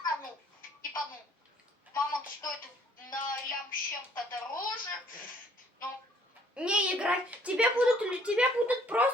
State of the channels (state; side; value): normal; both; correlation 0.61